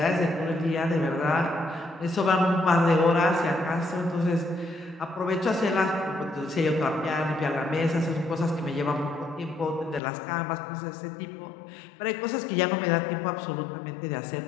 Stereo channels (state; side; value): drops out; right; at 10.0 s